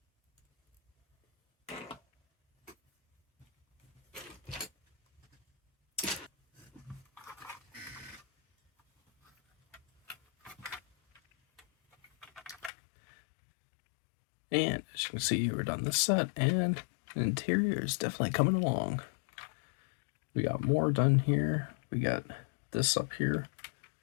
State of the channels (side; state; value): right; drops out; at 12.7 s